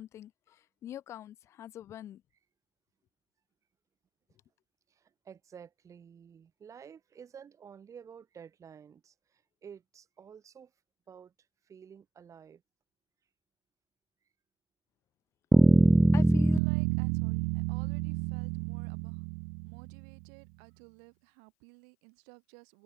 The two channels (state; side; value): drops out; left; at 16.6 s